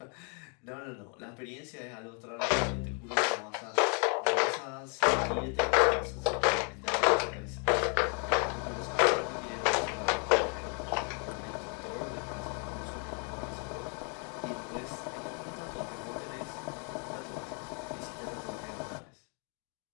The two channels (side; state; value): right; quieter; 39.1 dB